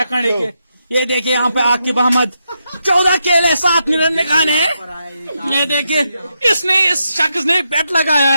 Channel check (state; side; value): inverted; both; correlation -0.84